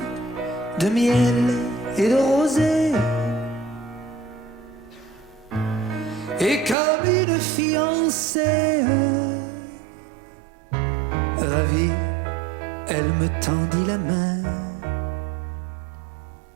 de miel et de rosée, et comme une fiancée ravie, elle me tendit la main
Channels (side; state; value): left; drops out; at 6.8 s